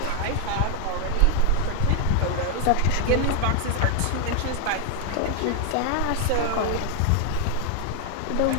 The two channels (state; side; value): different; both; correlation 0.00